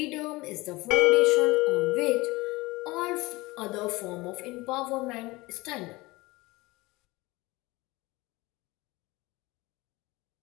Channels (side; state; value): right; quieter; 21.7 dB